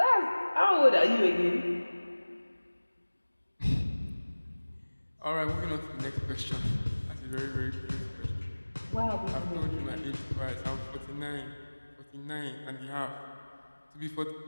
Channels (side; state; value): both; inverted; correlation -1.00